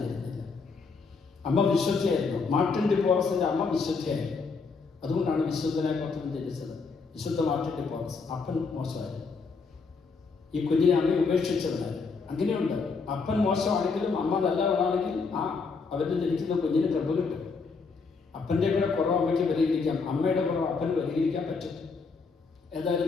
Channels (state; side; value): quieter; right; 4.7 dB